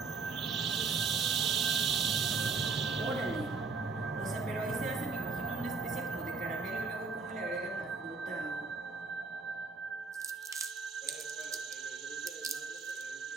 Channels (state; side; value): quieter; left; 4.6 dB